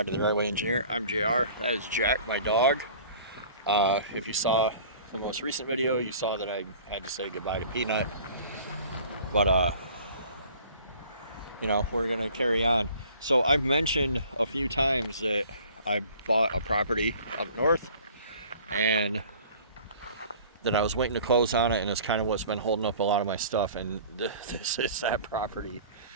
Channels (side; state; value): both; inverted; correlation -0.48